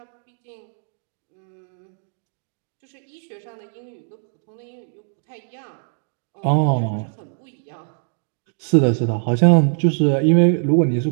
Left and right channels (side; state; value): left; silent; digital silence